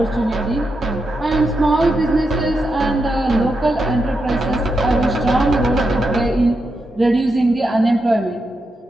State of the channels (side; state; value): both; normal; correlation 0.85